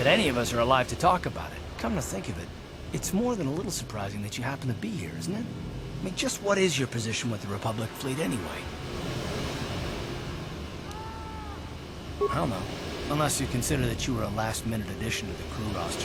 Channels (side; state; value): both; identical; correlation 1.00